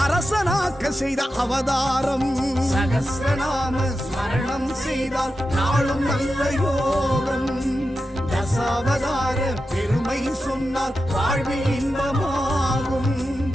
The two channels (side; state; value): both; normal; correlation 0.90